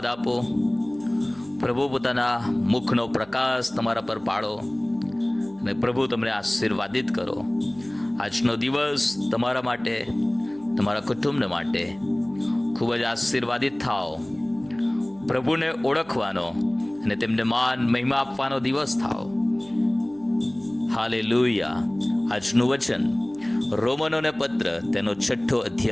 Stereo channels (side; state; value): right; noise; hum, 25 dB below the sound